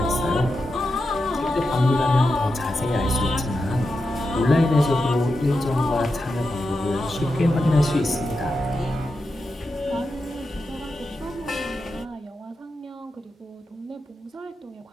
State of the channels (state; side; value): normal; both; correlation 0.88